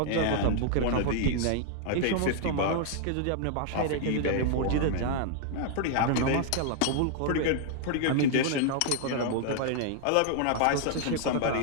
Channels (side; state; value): both; different; correlation -0.01